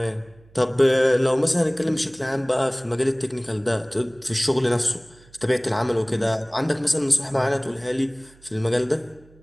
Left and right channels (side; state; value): right; noise; hum, 27 dB below the sound